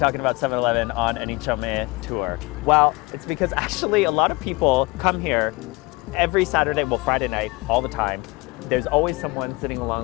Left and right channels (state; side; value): quieter; right; 23.8 dB